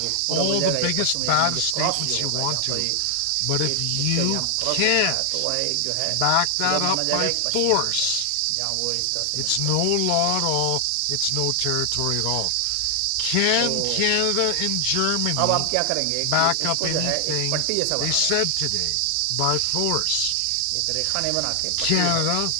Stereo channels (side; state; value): both; different; correlation 0.00